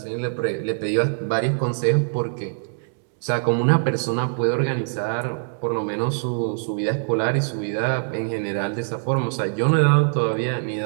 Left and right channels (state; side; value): silent; left; digital silence